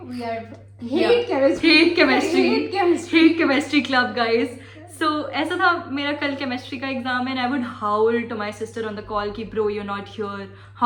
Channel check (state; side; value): identical; both; correlation 1.00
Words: We are Yeah. hate chemistry. Hate chemistry. Hate chemistry. Hate chemistry club, guys. So ऐसा था, मेरा कल chemistry का exam है and I would howl to my sister on the call कि bro, you're not here.